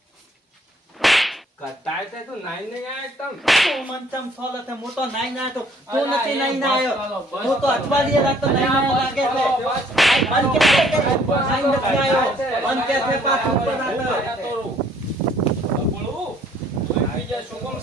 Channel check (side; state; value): both; normal; correlation 0.61